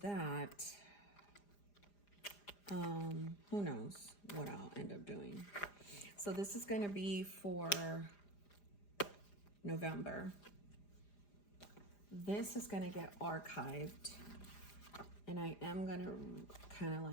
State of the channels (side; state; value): right; late; 4.9 ms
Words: Who knows what I'll end up doing. So this is going to be for November. This is going to get archived. And I am going to kind of